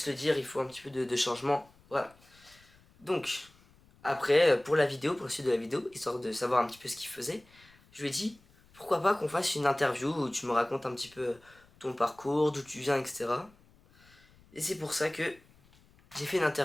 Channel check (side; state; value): left; noise; rumble, 28 dB below the sound